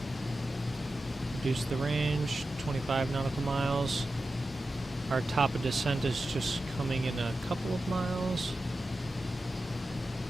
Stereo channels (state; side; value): normal; both; correlation 0.92